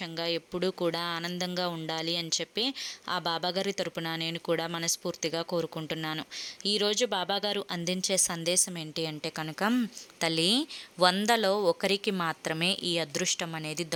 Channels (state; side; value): identical; both; correlation 1.00